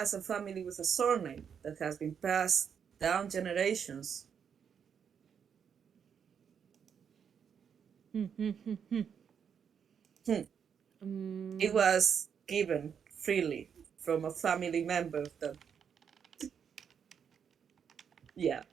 a family with a surname that has been passed down generations. Hmm. It was given freely from a family member that, yeah.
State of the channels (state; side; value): quieter; left; 7.4 dB